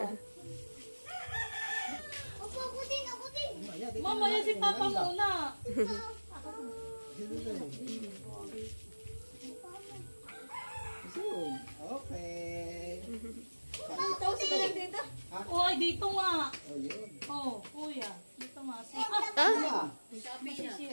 Ako din. Mamaya si Papa muna. Ayun. Okay. Tapos ito lang dito. Uy, dito nga. Oh, yun. Oh, kuya. Dito nga. Ah!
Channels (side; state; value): both; inverted; correlation -1.00